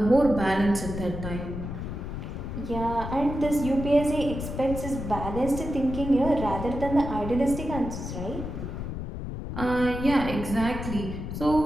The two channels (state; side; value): noise; left; rumble, 6 dB below the sound